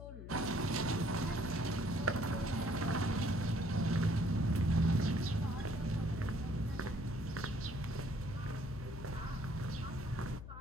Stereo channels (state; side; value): noise; left; hum, 11 dB below the sound